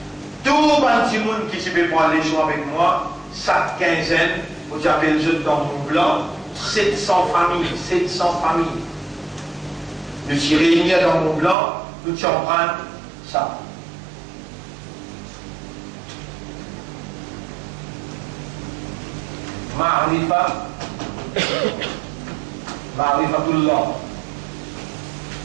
Tout le petit monde qui peut prendre les choix avec moi, chaque quinzaine, vous avez le jeu dans mon blanc, 700 familles, 700 familles. Nous sommes réunis dans mon blanc, nous allons prendre ça. Ma'rifatullah.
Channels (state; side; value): drops out; left; at 11.6 s